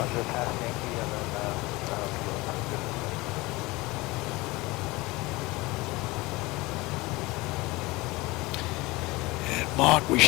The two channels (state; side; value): quieter; right; 21.9 dB